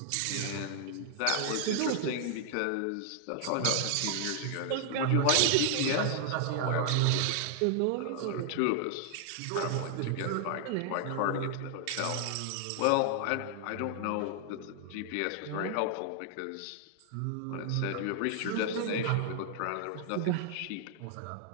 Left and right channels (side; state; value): both; different; correlation 0.00